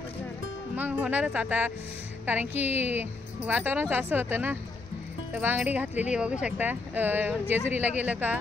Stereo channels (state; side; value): quieter; right; 3.6 dB